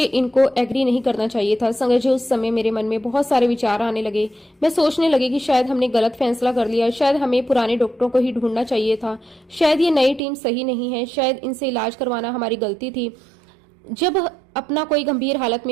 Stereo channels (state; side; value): drops out; left; at 10.2 s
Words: इनको एग्री नहीं करना चाहिए था। संगत जी, उस समय मेरे मन में बहुत सारे विचार आने लगे। मैं सोचने लगी कि शायद हमने गलत फैसला कर लिया, शायद हमें पुराने डॉक्टरों को ही ढूंढना चाहिए था, शायद ये नई टीम सही नहीं है, शायद इनसे इलाज करवाना हमारी गलती थी। जब अपना कोई गंभीर हालत